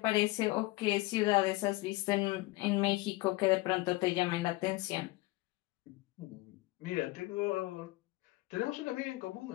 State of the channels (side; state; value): right; quieter; 20.8 dB